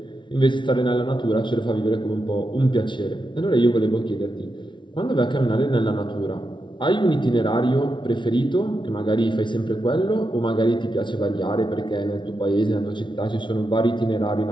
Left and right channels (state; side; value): late; right; 0.24 ms